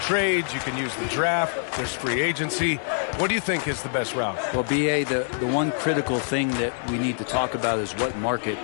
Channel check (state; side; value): silent; right; digital silence